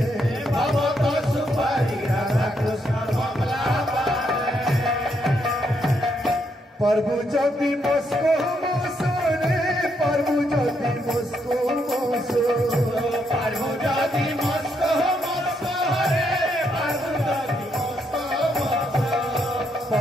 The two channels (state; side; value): normal; both; correlation 0.77